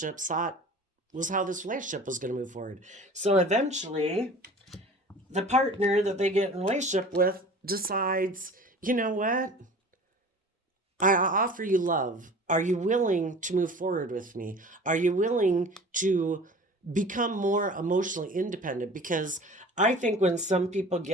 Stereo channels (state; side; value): normal; both; correlation 0.42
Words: thought was how this relationship was going to move forward. So eventually, the partner that they get in a relationship with decides, you know what? I offer you love. Are you willing to move forward with me? Are you willing to become more emotionally independent? Because I think when some people